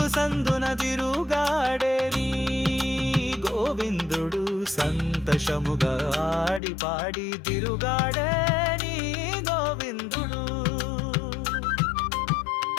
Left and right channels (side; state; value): right; drops out; at 6.6 s